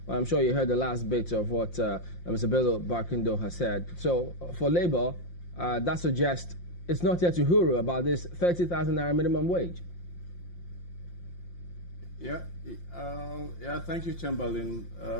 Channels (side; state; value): right; late; 5.7 ms